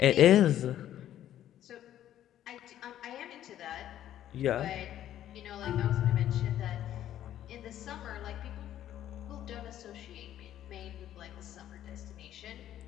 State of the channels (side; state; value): right; quieter; 11.8 dB